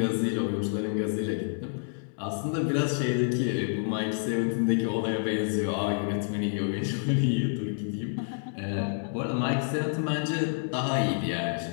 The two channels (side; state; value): right; silent; digital silence